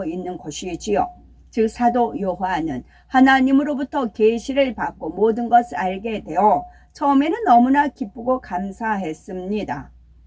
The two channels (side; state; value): both; identical; correlation 1.00